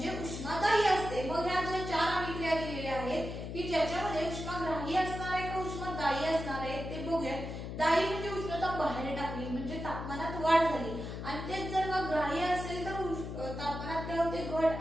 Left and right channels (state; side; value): noise; left; hum, 7 dB below the sound